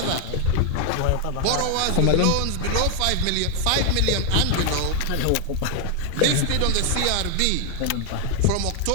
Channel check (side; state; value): both; different; correlation 0.00